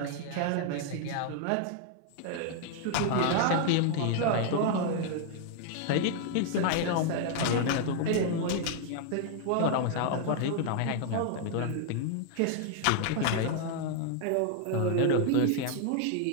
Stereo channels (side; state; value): both; different; correlation 0.00